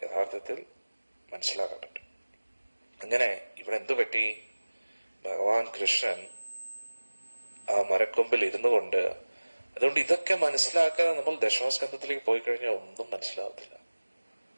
യഥാർത്ഥത്തിൽ മനസ്സിലാക്കാൻ പറ്റും. അങ്ങനെ ഇവിടെ എന്തു പറ്റി? ഭഗവാൻ കൃഷ്ണൻ ആ മരക്കൊമ്പിൽ ഇരുന്നു കൊണ്ട്, അതുകൊണ്ട് ഇതൊക്കെ മനസ്സിലാക്കാതെ നമ്മൾ ദശമസ്കന്ധത്തിലേക്ക് പോയി കഴിഞ്ഞാൽ ഒന്നും മനസ്സിലാവത്തില്ല.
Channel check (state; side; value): inverted; both; correlation -1.00